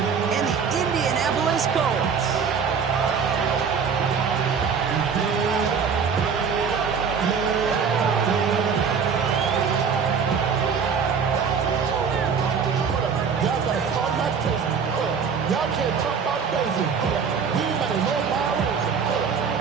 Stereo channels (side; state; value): left; quieter; 6.2 dB